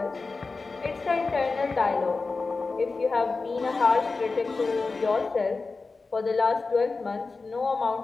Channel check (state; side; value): quieter; right; 4.0 dB